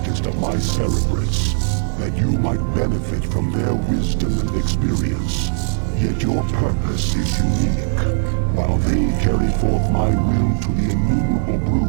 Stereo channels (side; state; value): left; silent; digital silence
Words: of my Cerebrates, that you might benefit from their wisdom and experience. Yet your purpose is unique. While they carry forth my will to the innumerable